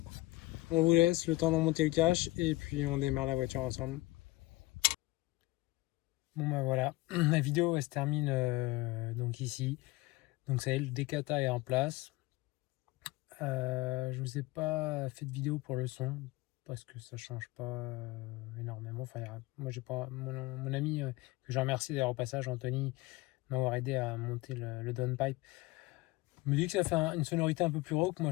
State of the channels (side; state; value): right; quieter; 20.2 dB